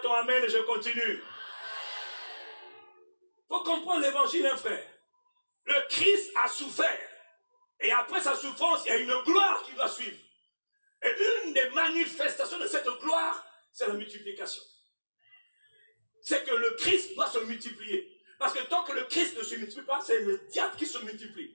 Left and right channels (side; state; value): both; inverted; correlation -1.00